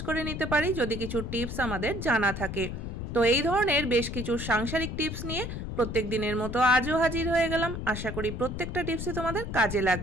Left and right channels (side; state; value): left; noise; rumble, 6 dB below the sound